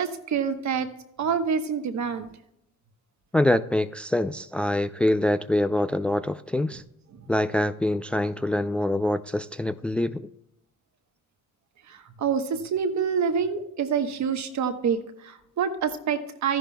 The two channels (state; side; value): normal; both; correlation 0.53